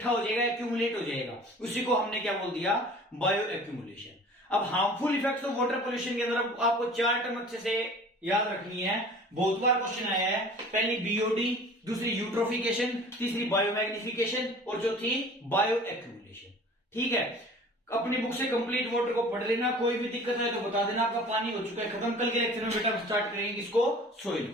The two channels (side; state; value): both; normal; correlation 0.45